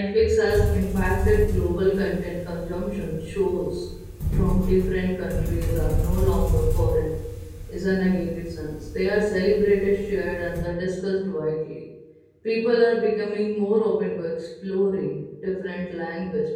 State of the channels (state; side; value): identical; both; correlation 1.00